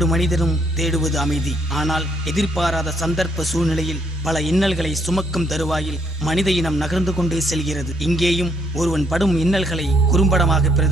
மனிதரும் தேடுவது அமைதி. ஆனால் எதிர்பாராத சந்தர்ப்ப சூழ்நிலையில் பல இன்னல்களை சுமக்கும் தருவாயில் மனித இனம் நகர்ந்து கொண்டே செல்கிறது. இங்கேயும் ஒருவன் படும் இன்னல்களை குறும்படமாக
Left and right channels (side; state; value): both; normal; correlation 0.70